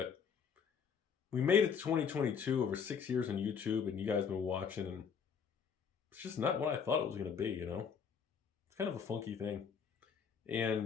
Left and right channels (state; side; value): quieter; right; 6.6 dB